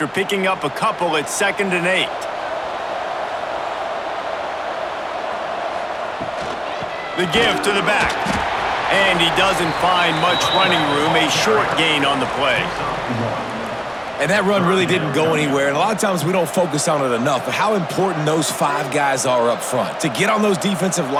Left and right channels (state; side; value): identical; both; correlation 1.00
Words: picking up a couple, it's 2nd and 8. The give to the back. And he doesn't find much running room, a short gain on the play. And that run really didn't go anywhere, and a lot of times we don't focus on it enough, but how important those 5 guys are up front. To get on those defensive